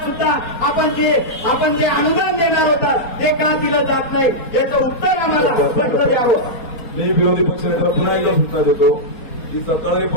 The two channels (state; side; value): late; right; 4.2 ms